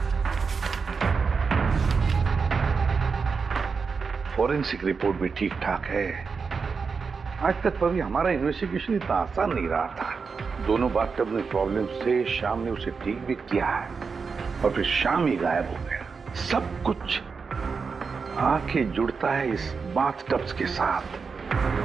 फॉरेंसिक रिपोर्ट भी ठीक ठाक है। आज तक कभी हमारा इन्वेस्टिगेशन इतना आसान नहीं रहा था। दोनों बाथटब में प्रॉब्लम से शाम ने उसे ठीक भी किया है और फिर शाम ही गायब हो गया। सब कुछ आके जुड़ता है इस बाथटब्स के साथ।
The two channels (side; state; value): left; quieter; 5.2 dB